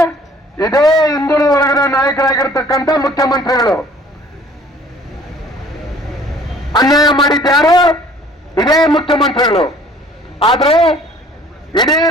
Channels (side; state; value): both; normal; correlation 0.53